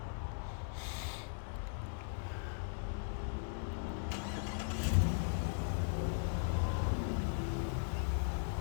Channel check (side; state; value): right; silent; 52 dB below the other